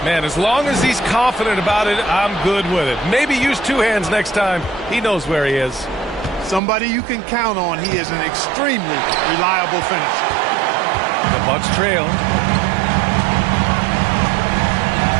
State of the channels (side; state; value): left; drops out; at 6.6 s